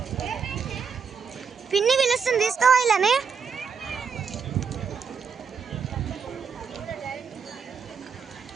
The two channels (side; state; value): left; quieter; 6.0 dB